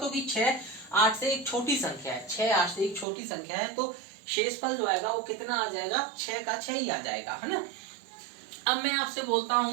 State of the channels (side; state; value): left; drops out; at 3.1 s